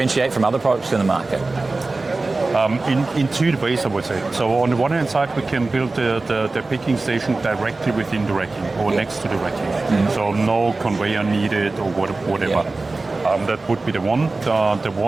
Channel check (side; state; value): left; quieter; 3.4 dB